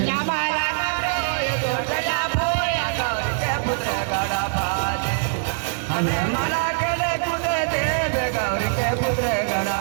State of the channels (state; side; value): silent; left; digital silence